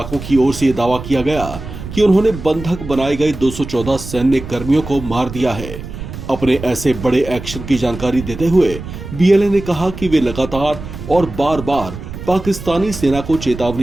की ओर से यह दावा किया गया कि उन्होंने बंधक बनाए गए 214 सैन्य कर्मियों को मार दिया है। अपने ऐसे बड़े एक्शन की जानकारी देते हुए बीएलए ने कहा कि वे लगातार और बार बार पाकिस्तानी सेना को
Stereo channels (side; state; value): right; noise; rumble, 11 dB below the sound